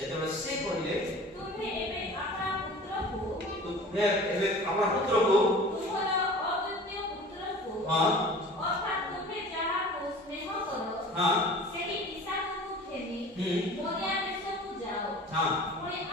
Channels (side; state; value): both; normal; correlation 0.42